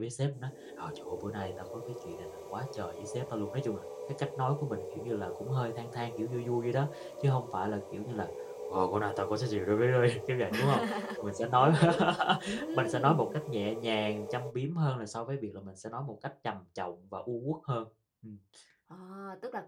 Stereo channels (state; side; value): identical; both; correlation 1.00